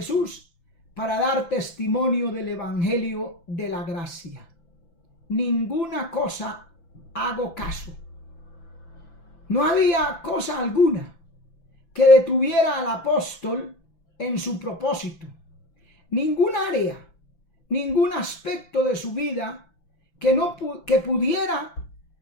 para dar testimonio del evangelio de la gracia. Ninguna cosa hago caso. No había cosa alguna que detuviera al apóstol en su propósito. Ningún área, ningún aspecto de su vida que pudiera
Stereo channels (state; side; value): late; right; 5.9 ms